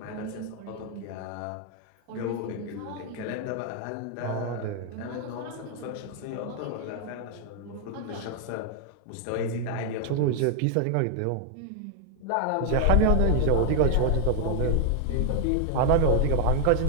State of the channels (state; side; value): different; both; correlation 0.00